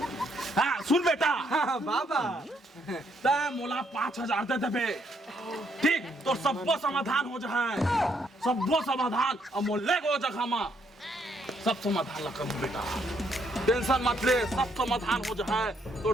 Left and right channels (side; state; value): both; normal; correlation 0.72